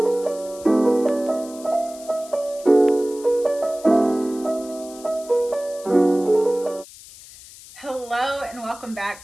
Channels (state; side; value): noise; left; hiss, 19 dB below the sound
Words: Hello and welcome back